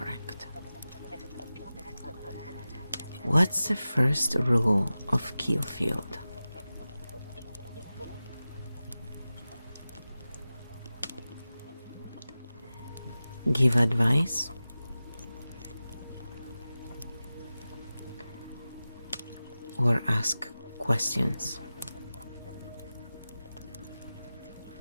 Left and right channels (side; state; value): both; inverted; correlation -0.94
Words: What's the first rule of KEO Field? Give advice, or ask questions.